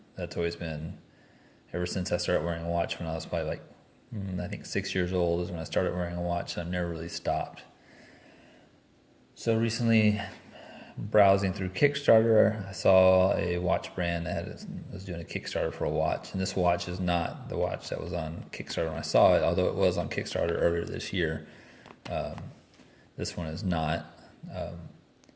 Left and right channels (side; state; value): both; identical; correlation 1.00